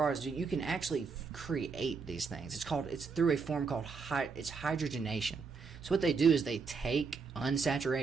is you can actually create these things. It's through a form called hydrogenation. So what they do is they take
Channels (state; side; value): quieter; left; 5.0 dB